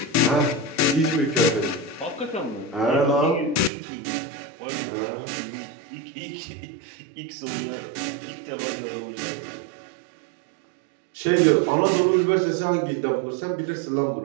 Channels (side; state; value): left; drops out; at 3.7 s